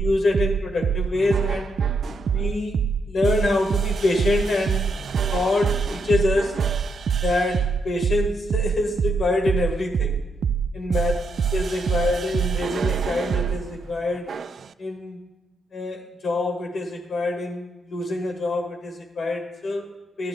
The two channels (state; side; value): normal; both; correlation 0.78